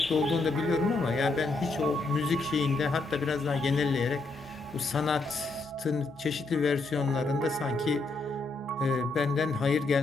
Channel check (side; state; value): right; quieter; 3.5 dB